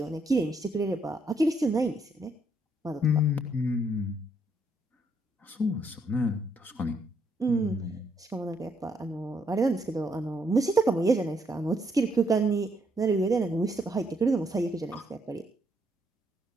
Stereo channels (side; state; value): both; normal; correlation 0.73